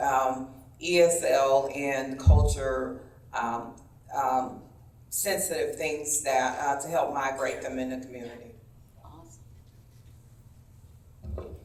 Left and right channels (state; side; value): identical; both; correlation 1.00